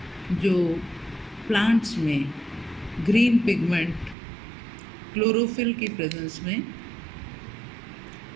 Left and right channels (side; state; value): left; drops out; at 4.2 s